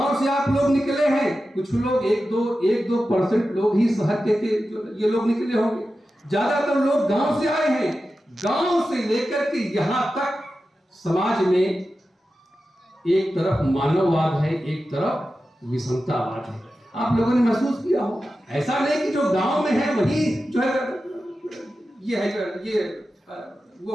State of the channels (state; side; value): normal; both; correlation 0.92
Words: से आप लोग निकले हैं, कुछ लोग 1-2% लोग ही शहर के ये लोग निकले होंगे, ज्यादातर लोग गांव से आए हैं। गांव से लेकर के यहां तक समाज में एक तरफ मानववाद है, एक तरफ विषमतावाद है। आप लोगों ने महसूस किया होगा। ऐसा नहीं कि जो गांव में है वही जो है ये है, ये